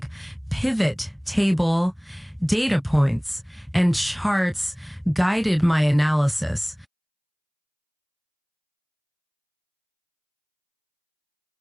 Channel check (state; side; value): identical; both; correlation 1.00